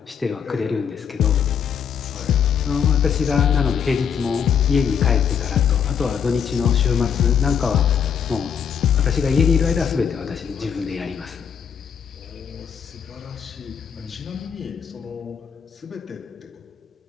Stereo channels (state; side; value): quieter; right; 7.5 dB